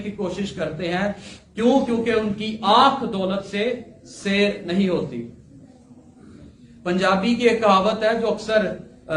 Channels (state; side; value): identical; both; correlation 1.00